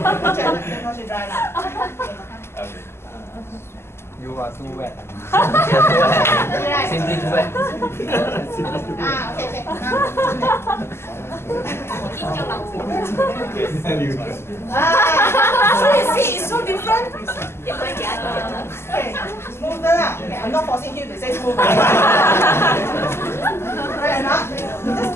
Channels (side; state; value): right; late; 0.12 ms